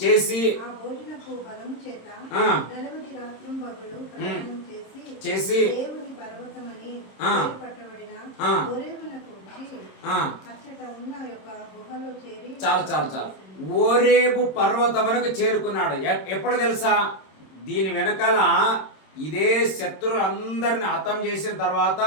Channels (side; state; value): right; late; 26 ms